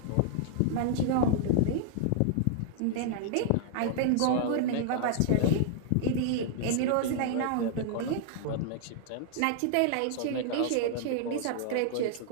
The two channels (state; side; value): different; both; correlation -0.01